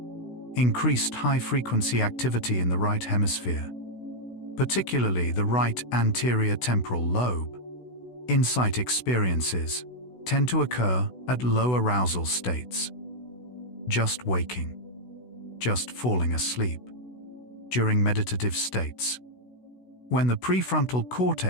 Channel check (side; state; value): right; late; 16 ms